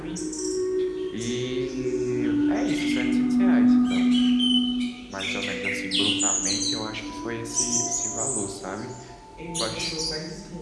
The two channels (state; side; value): identical; both; correlation 1.00